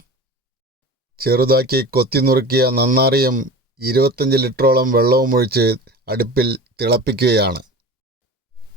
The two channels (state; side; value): normal; both; correlation 0.35